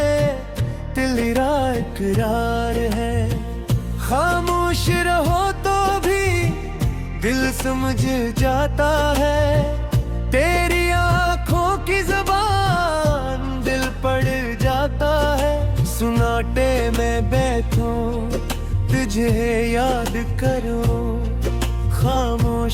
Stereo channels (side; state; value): both; identical; correlation 1.00